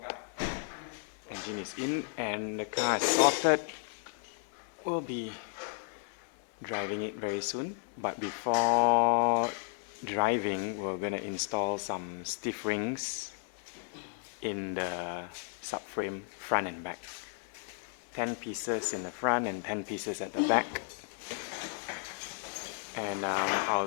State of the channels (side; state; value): right; silent; 55 dB below the other